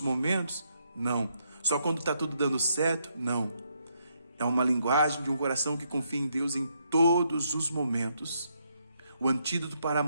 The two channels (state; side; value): inverted; both; correlation -0.76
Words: momentos, não. Só quando está tudo dando certo, não. É uma linguagem de um coração que confia em Deus em todos os momentos. O antídoto para a